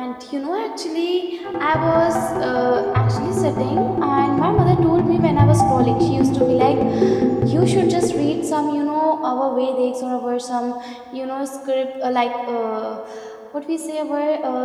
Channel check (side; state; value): both; identical; correlation 1.00